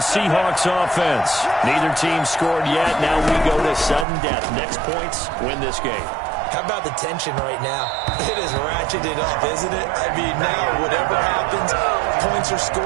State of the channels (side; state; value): left; drops out; at 4.0 s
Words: offense. Neither team scored yet. Now we go to sudden death. Next points win this game. How about the tension right now? It is ratcheted up, isn't it? I mean, now whatever happens, points are